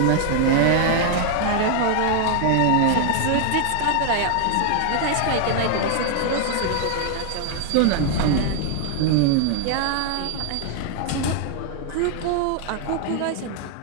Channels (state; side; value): different; both; correlation 0.00